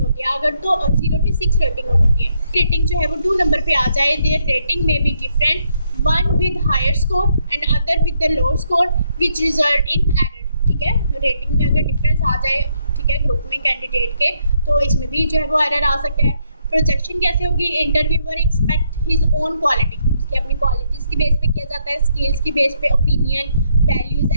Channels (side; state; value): both; inverted; correlation -0.75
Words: होती है, अगर तो 0 to 6 रेटिंग होती है। रेटिंग जो है वो 2 नंबर पे आ जाए, देयर रेटिंग में be different, one with higher score and other with the low score which result in error, ठीक है, रेटिंग में अगर डिफरेंस आ जाए, ठीक है, ग्रुप में कैंडिडेट के, तो इसमें भी जो है वो एरर आ सकता है। प्रोजेक्शन कैसे होगी, interviewer expect his own quality, उसकी अपनी क्वालिटीज़ की बेस पे किया जाता है, स्किल्स की बेस पे, opinion, values